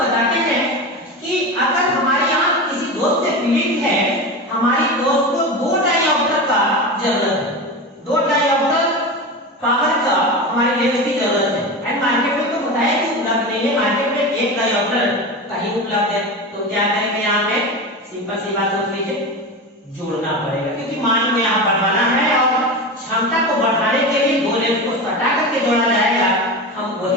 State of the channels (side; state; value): both; normal; correlation 0.24